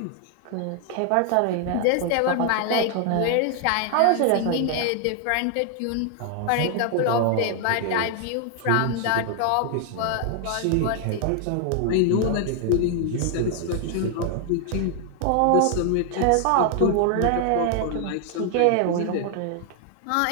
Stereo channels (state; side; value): different; both; correlation 0.00